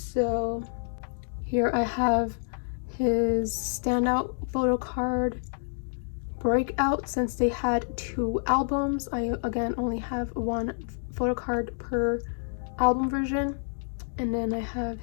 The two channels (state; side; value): silent; right; digital silence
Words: here I have his Standout photo card Breakout. Since they had 2 albums, I again only have 1 photo card per album version. And then I have